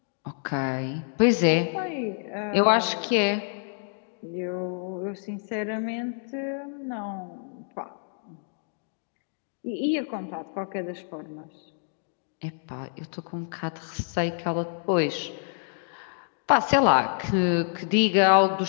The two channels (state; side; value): silent; right; digital silence